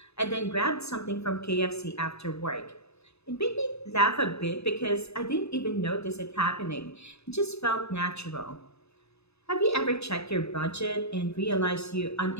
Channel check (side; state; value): right; late; 0.79 ms